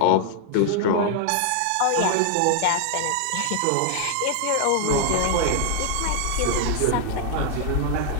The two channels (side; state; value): both; different; correlation 0.00